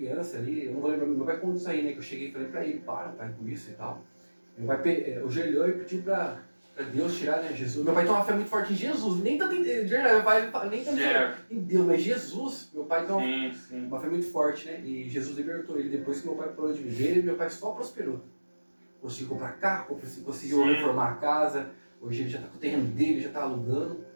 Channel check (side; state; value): both; inverted; correlation -1.00